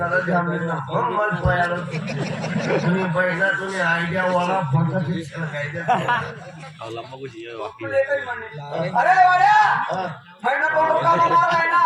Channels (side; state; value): both; identical; correlation 1.00